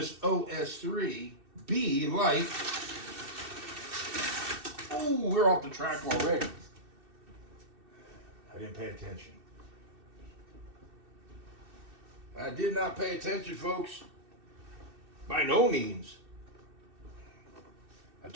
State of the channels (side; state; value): left; late; 2.6 ms